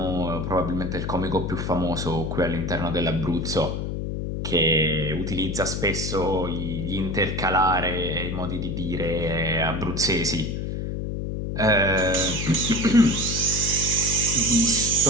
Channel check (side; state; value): left; noise; hum, 3 dB below the sound